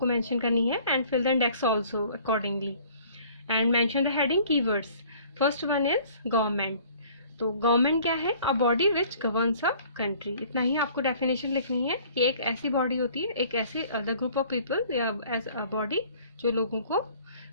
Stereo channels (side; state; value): both; inverted; correlation -0.53